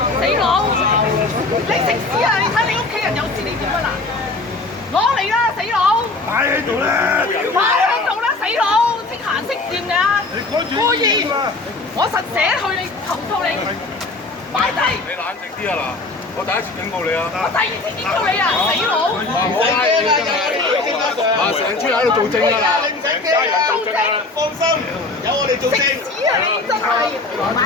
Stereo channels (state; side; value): quieter; right; 3.3 dB